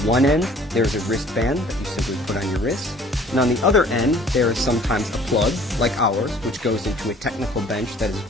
end, there's a wristband that you simply put on your wrist. And on the other end, there is sometimes a plug, like ours, which goes into a technical bench that is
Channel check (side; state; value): both; normal; correlation 0.54